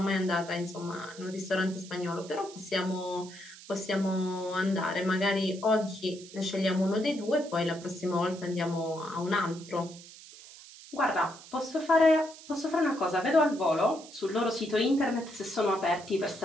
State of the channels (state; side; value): noise; right; hiss, 18 dB below the sound